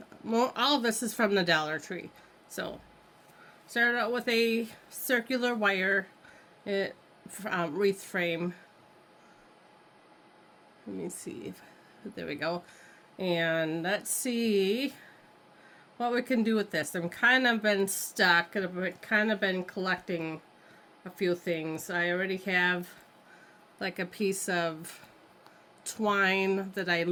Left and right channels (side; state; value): both; identical; correlation 1.00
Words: well, all of this is from the Dollar Tree. So started out with a circular wire wreath frame. Let me see. There we go. And let's see what we can do with this. I'm kind of been stuck and I've kind of been collecting a few things. I already have like a piece of twine that I